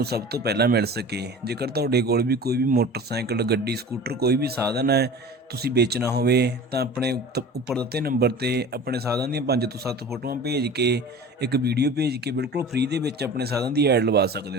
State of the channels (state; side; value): normal; both; correlation 0.38